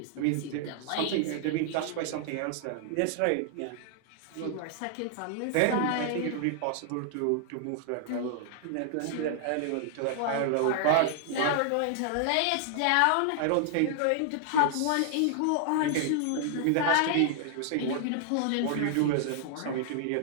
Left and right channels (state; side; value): different; both; correlation -0.01